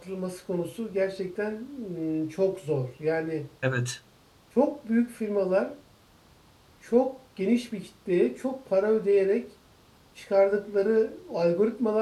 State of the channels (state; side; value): identical; both; correlation 1.00